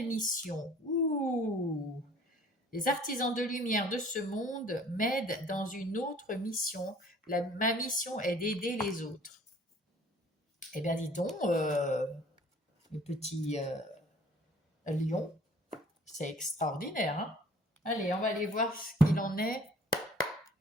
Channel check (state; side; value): normal; both; correlation 0.53